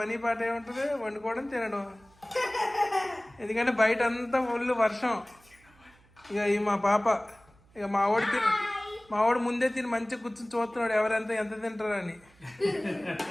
పని పాట ఏముంటుంది, వండుకోవడం తినడం. ఎందుకంటే బయట అంతా ఫుల్ వర్షం. ఇక ఈ మా పాప, ఇక మా వాడు ముందే తిని మంచిగా కూర్చొని చూస్తున్నాడు ఎవరెంత ఎంత తింటారని.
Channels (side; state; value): right; noise; hum, 29 dB below the sound